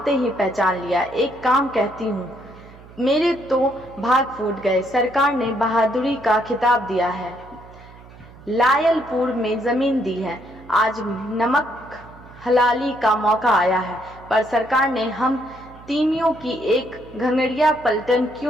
ही पहचान लिया। एक काम कहती हूँ, मेरे तो भाग फूट गए। सरकार ने बहादुरी का खिताब दिया है, लायलपुर में जमीन दी है। आज नमक हलाली का मौका आया है, पर सरकार ने हम तीमियों की एक घंगड़िया पलटन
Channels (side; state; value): right; noise; hum, 21 dB below the sound